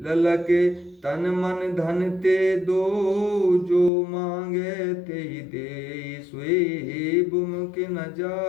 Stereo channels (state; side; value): drops out; right; at 3.9 s